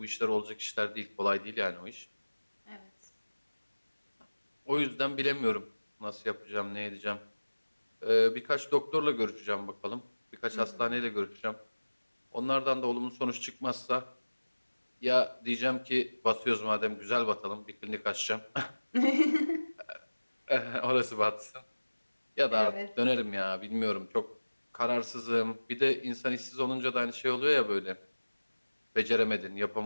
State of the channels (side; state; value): both; inverted; correlation -1.00